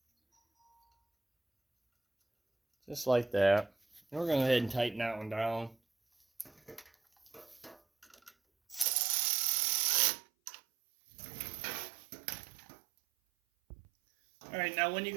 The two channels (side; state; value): left; drops out; at 8.8 s